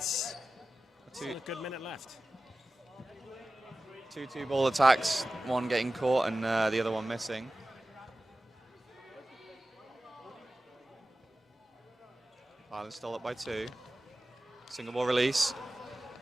Still a good minute left. Two ball attacks, one getting caught and the other one missing. Ireland still up by 2. Single ball release,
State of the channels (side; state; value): both; normal; correlation 0.95